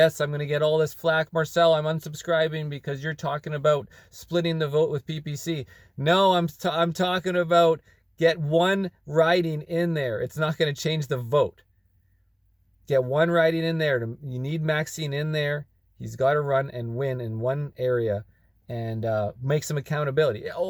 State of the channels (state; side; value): identical; both; correlation 1.00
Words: I'm going to get all this flack. Marcel, I'm unsubscribing because you're talking about splitting the vote with PPC. No, I'm talking about get one riding in there. It's not going to change the vote. Get one riding in there. You need Maxine in there. He's got to run and win in one area and make some accountability.